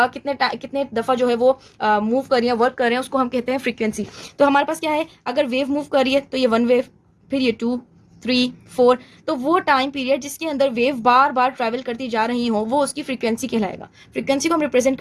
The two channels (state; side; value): identical; both; correlation 1.00